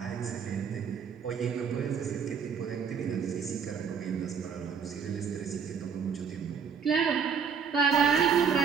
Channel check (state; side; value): quieter; left; 6.6 dB